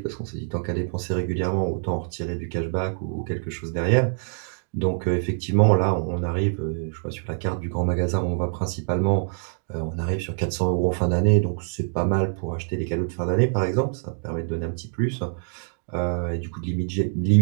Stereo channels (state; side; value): silent; left; 60 dB below the other